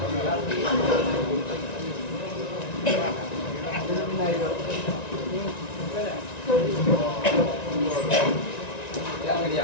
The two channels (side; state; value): right; late; 1.9 ms